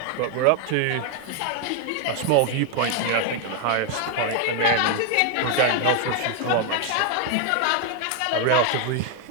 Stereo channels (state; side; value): different; both; correlation 0.01